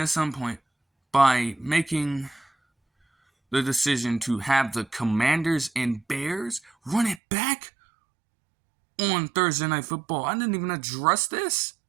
some point by making the decision to have the Commanders and Bears run it back on Thursday Night Football. I didn't even address this.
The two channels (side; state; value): left; drops out; at 7.2 s